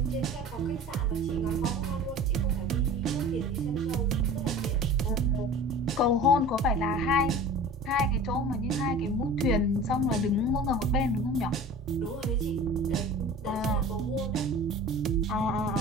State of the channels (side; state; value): both; normal; correlation 0.39